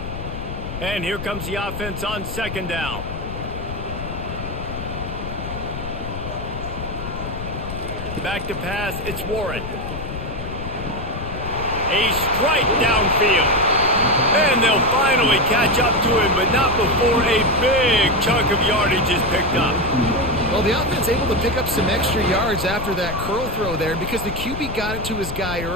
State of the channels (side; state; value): left; noise; rumble, 8 dB below the sound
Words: And here comes the offense on 2nd down. Back to pass, it's Warren. A strike downfield. And they'll finally catch up to him, but not before a big chunk of yardage is picked up. Well, the offense able to pick up some extra yards after that curl throw there. And because the QB got it to his guy